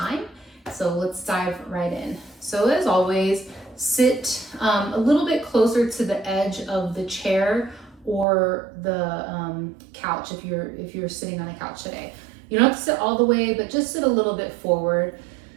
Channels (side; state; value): left; drops out; at 8.2 s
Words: So let's dive right in. So as always, sit a little bit closer to the edge of the chair or the couch if you're sitting on a couch today. You don't have to sit all the way, but just sit a little bit forward.